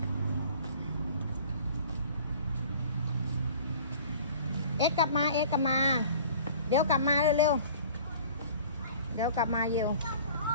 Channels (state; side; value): inverted; both; correlation -0.46